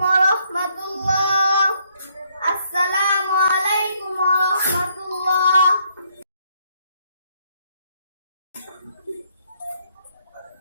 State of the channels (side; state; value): both; inverted; correlation -0.70